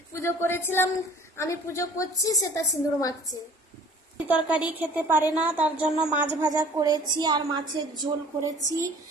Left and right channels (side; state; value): both; normal; correlation 0.49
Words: পুজো করেছিলাম, আমি পুজো করছি, সেটা সিঁদুর মাখছে। তরকারি খেতে পারে না, তার জন্য মাছ ভাজা করেছি আর মাছের ঝোল করেছি